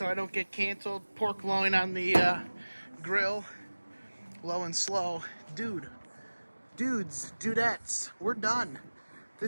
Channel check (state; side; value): inverted; both; correlation -1.00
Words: I don't get canceled. Pork loin on the grill, low and slow. Dudes, dudettes, we're done.